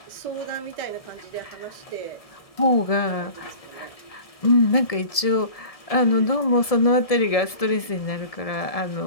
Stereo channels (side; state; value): right; late; 1.7 ms